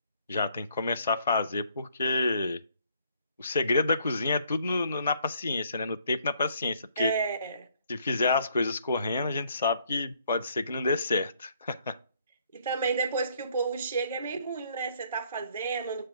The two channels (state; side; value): inverted; both; correlation -0.66